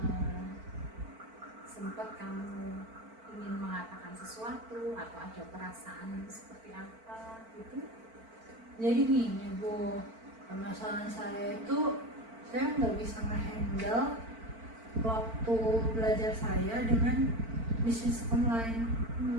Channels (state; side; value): late; left; 4.5 ms